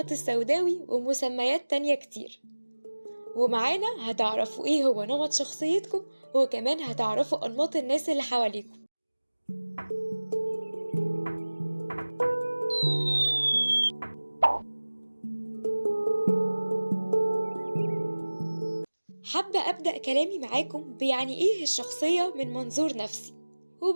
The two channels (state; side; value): inverted; both; correlation -1.00